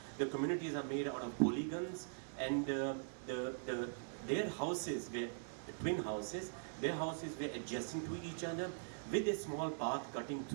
The communities are made out of polygons, and their houses were twin houses. Their houses were adjacent to each other with a small path cutting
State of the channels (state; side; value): silent; left; digital silence